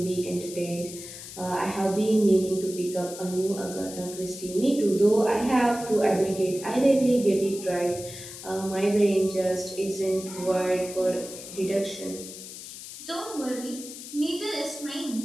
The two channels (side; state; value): left; noise; hiss, 12 dB below the sound